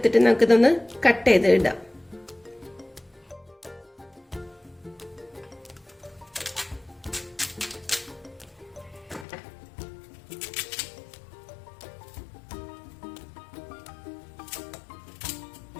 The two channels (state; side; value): drops out; right; at 9.2 s